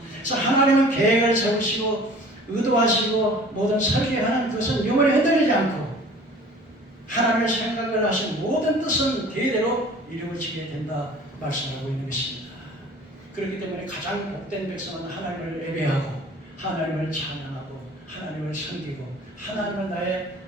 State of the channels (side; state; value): both; normal; correlation 0.47